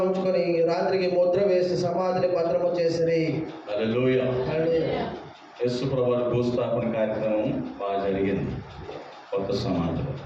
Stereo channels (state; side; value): identical; both; correlation 1.00